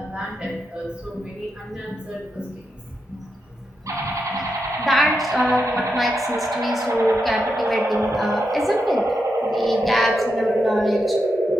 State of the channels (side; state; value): both; normal; correlation 0.85